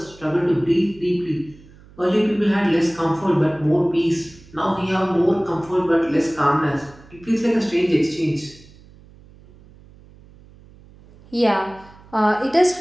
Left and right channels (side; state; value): right; noise; hum, 24 dB below the sound